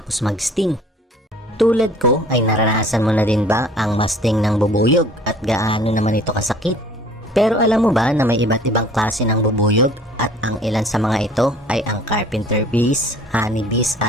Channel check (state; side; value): normal; both; correlation 0.51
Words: mag-sting? Tulad ko ay naranasan mo na din ba ang masting ng bubuyog at gaano naman ito kasakit? Pero alam mo ba na may iba't ibang klase ng bubuyog at ang ilan sa mga ito ay ang carpenter bees, honey bees